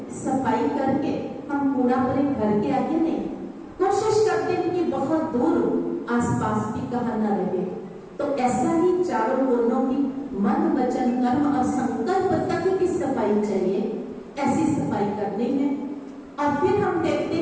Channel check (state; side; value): identical; both; correlation 1.00